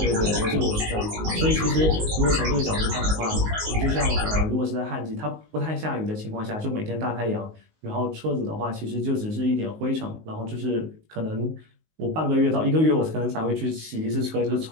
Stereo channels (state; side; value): late; left; 19 ms